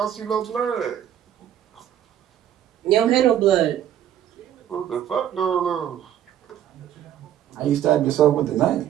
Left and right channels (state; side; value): quieter; left; 10.8 dB